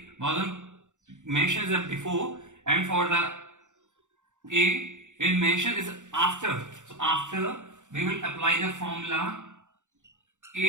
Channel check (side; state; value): left; late; 0.85 ms